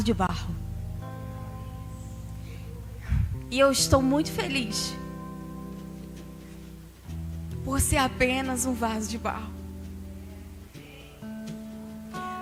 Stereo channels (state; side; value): identical; both; correlation 1.00